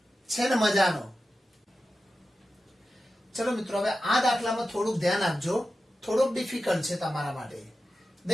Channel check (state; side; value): normal; both; correlation 0.93